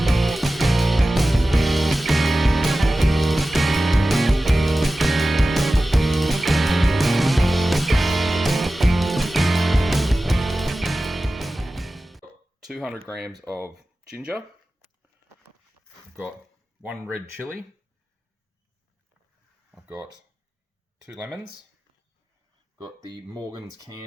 200 grams of ginger. I've got 1 red chilli. I've got 2 lemons. Got the Morgan's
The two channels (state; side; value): normal; both; correlation 0.95